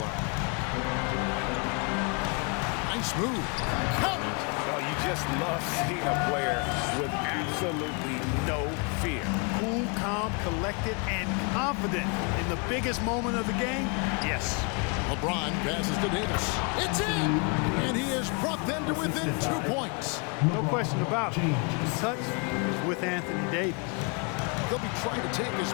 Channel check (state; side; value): quieter; right; 34.3 dB